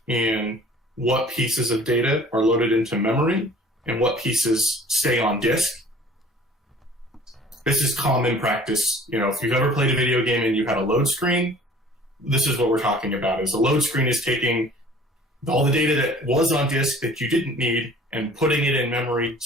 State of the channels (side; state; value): both; normal; correlation 0.49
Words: in what pieces of data are loaded into memory and what pieces stay on disk. This is common practice. If you've ever played a video game and you had a load screen, this is what we're talking about. Is a load screen is taking all the data that was on disk that you didn't need and putting it in memory